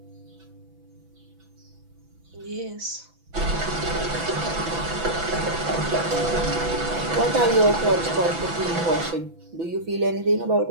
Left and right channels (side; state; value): left; late; 6.0 ms